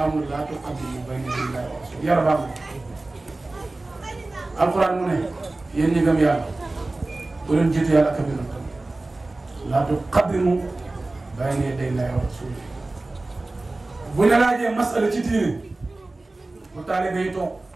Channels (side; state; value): left; quieter; 3.0 dB